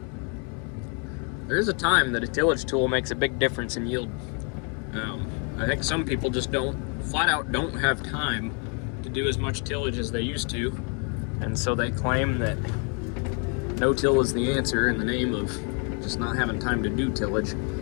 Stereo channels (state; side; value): quieter; right; 38.0 dB